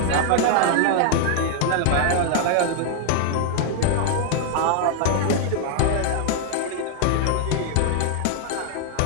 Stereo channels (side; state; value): both; different; correlation 0.00